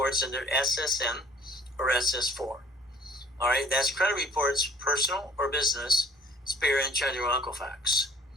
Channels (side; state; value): both; normal; correlation 0.55